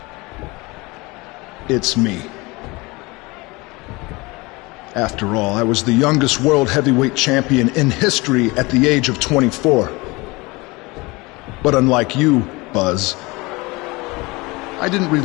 it's me. After all, I was the youngest world heavyweight champion in history at the age of 24. But unlike you, Buzz, I didn't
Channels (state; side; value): quieter; right; 24.1 dB